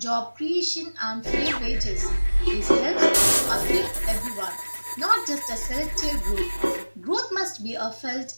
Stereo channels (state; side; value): inverted; both; correlation -1.00